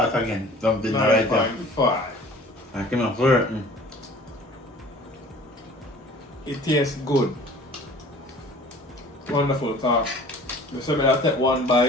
again. Something right there. 9.5. I cannot flirt. It tastes good. Wonderful talk. So I take one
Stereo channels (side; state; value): both; normal; correlation 0.47